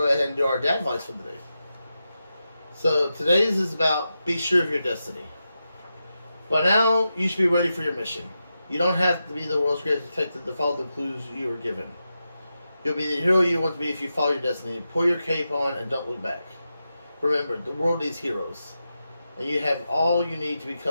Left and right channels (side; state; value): both; inverted; correlation -0.89